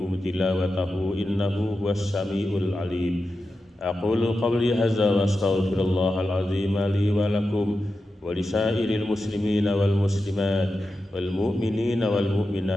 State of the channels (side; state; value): both; normal; correlation 0.91